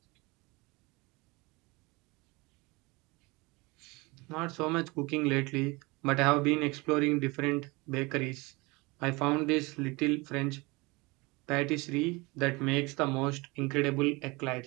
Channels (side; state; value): left; quieter; 24.9 dB